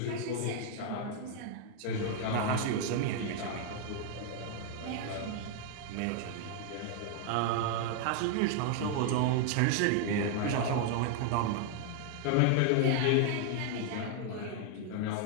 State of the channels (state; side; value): different; both; correlation 0.00